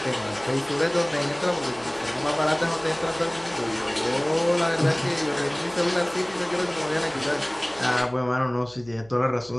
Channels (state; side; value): noise; right; hum, 24 dB below the sound